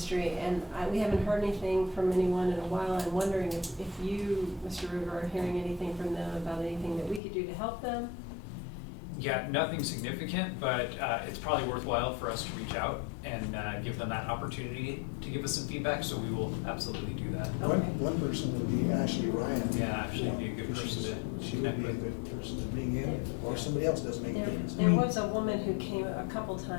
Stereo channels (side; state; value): right; drops out; at 7.2 s